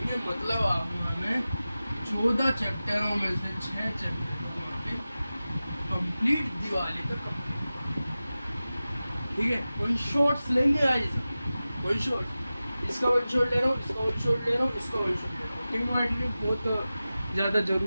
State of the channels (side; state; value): both; inverted; correlation -0.95